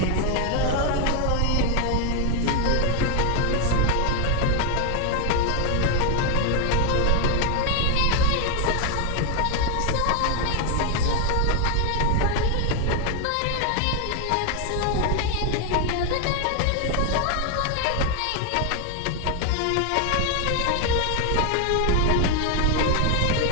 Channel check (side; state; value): both; different; correlation 0.01